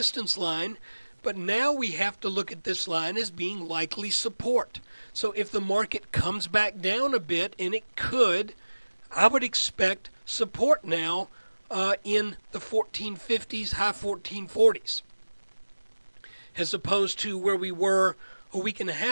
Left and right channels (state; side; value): inverted; both; correlation -1.00